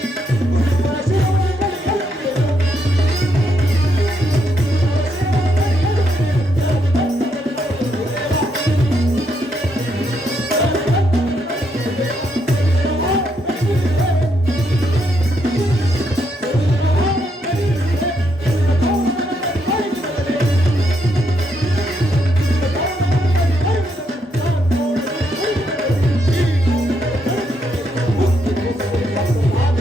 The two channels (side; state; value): both; normal; correlation 0.77